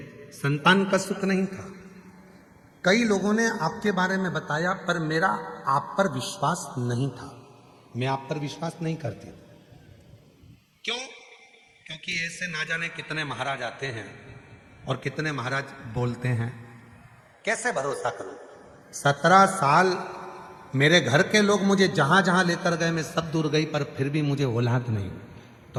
संतान का सुख नहीं था। कई लोगों ने आपके बारे में बताया, पर मेरा आप पर विश्वास नहीं था। मैं आप पर विश्वास नहीं करती। क्यों? क्योंकि ऐसे ना जाने कितने महाराज आते हैं और कितने महाराज बोलते हैं, कैसे भरोसा करूं? 17 साल मेरे घर के लोग मुझे जहां जहां लेकर गए, मैं सब दूर गई, पर फिर भी मुझे औलाद नहीं।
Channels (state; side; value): identical; both; correlation 1.00